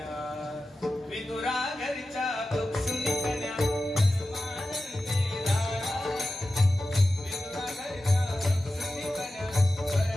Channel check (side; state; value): both; normal; correlation 0.93